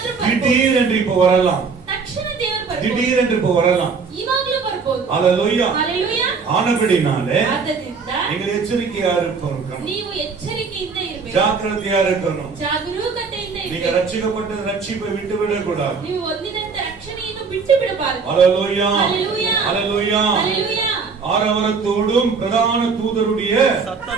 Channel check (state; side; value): quieter; left; 5.1 dB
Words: ಬರ್ಬೋದು. திடீர் என்று இப்ப வரலாம், ತಕ್ಷಣ ದೇವರು ಬರ್ಬೋದು. திடீர் என்று இப்ப வரலாம். ಇವಾಗ್ಲೂ ಬರ್ಬೋದು. ஹalleluya. ஹalleluya. ஆனபடினாலே ಆದ್ದರಿಂದ நீங்கள் எச்சரிக்கையா இருக்கணும், ನೀವು ಎಚ್ಚರಿಕೆಯಿಂದ ಇರಬೇಕು, ஜாக்கிரதையா இருக்கணும். ಜಾಗರೂಕತೆಯಿಂದ நீங்க ಇರಬೇಕು. ரட்சிக்கப்பட்ட ரட்சிப்பை விட்டு விடக்கூடாது. ನೀವು ಹೊಂದಿದಂತ ರಕ್ಷಣೆಯನ್ನು ಬಿಟ್ಟು ಬಿಡಬಾರದು. ஹalleluya. ஹalleluya. ஹalleluya. ஹalleluya. ஆரவாரத்தோடும் பிரதான தூதருடைய